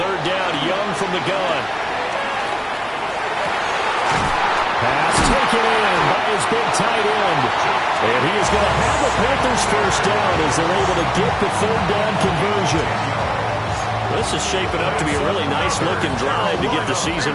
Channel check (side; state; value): both; identical; correlation 1.00